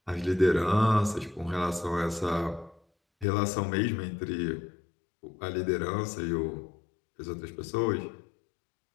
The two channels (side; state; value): right; drops out; at 3.2 s